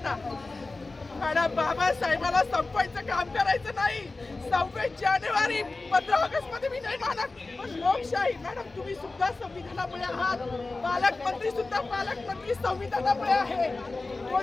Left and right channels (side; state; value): right; quieter; 3.4 dB